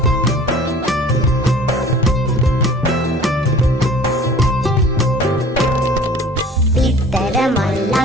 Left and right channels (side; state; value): both; normal; correlation 0.47